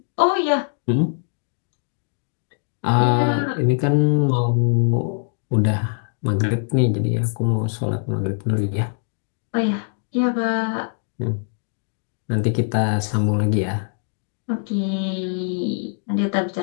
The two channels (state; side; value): silent; right; digital silence